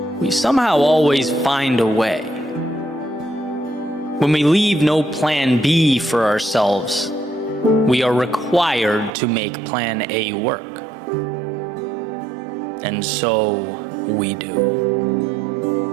we somehow always find a way. When we leave no plan B for ourselves, we are required to make plan A work. And so we do.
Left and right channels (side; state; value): left; drops out; at 9.2 s